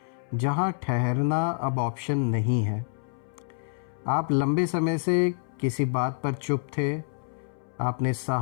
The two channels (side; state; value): right; silent; 60 dB below the other